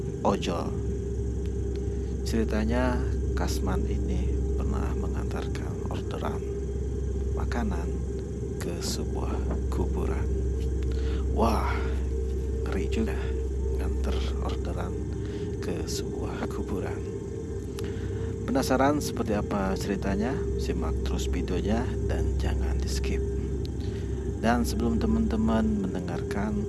ojol. Ceritanya, Kasman ini pernah mengantarkan orderan makanan ke sebuah kuburan. Wah, ngeri juga nganter orderan ke sebuah kuburan. Penasaran seperti apa ceritanya? Simak terus videonya dan jangan di skip. Dan sebelum teman-teman mendengarkan,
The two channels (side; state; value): both; identical; correlation 1.00